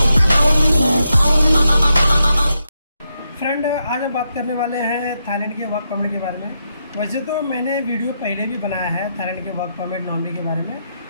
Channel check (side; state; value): both; inverted; correlation -0.83